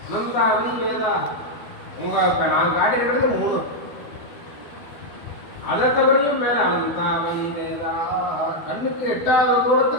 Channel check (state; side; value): late; right; 12 ms